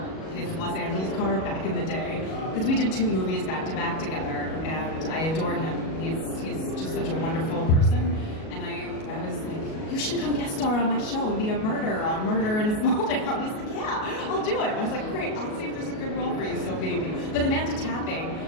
his Los Angeles car, back in the day because we did 2 movies back to back together, and I adore him. He's just such a wonderful person, and I was like, you should come guest star on my show and be a murderer on Murder in a Small Town. He's like, yeah, I'll do it. I was like, great, I'll see if there's a good role for you, so maybe. But Amanda Tapping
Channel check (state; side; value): late; right; 37 ms